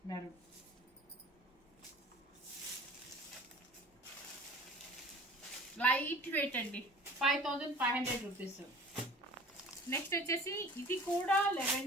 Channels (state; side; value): normal; both; correlation 0.44